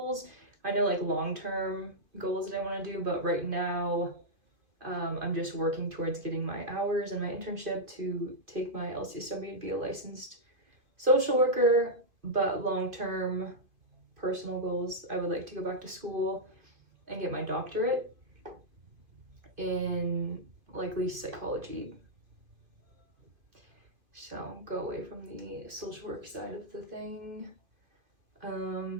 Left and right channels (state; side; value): late; left; 2.5 ms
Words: I know like long-term goals that I want to do, but right now I'm just working towards getting my hours and my internship to take my LCSW to be a licensed social worker. But long-term personal goals, I would like to go back to school and get my doctorate in likely psychology. So go away from the social work side of the thing.